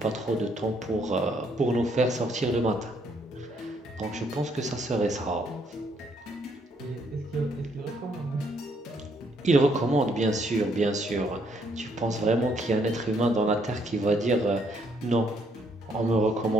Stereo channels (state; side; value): normal; both; correlation 0.70